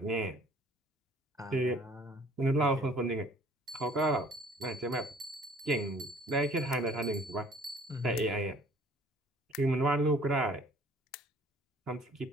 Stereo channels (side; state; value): both; normal; correlation 0.54